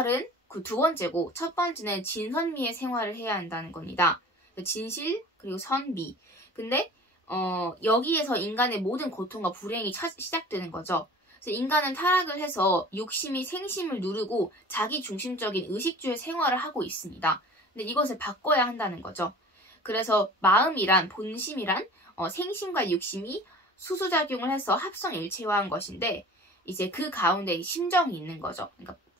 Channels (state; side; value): normal; both; correlation 0.42